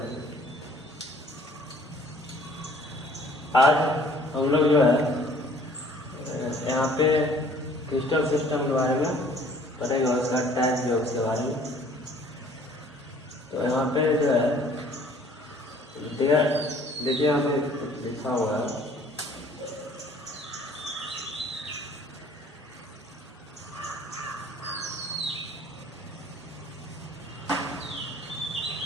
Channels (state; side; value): normal; both; correlation 0.55